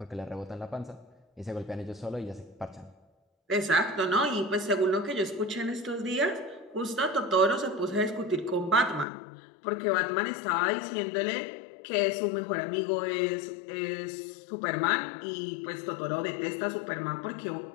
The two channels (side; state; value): right; drops out; at 9.1 s